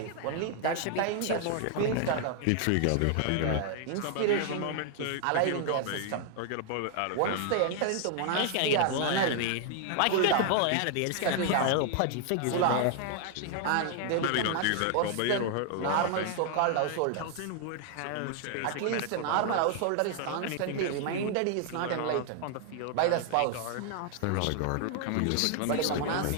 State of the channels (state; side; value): different; both; correlation 0.00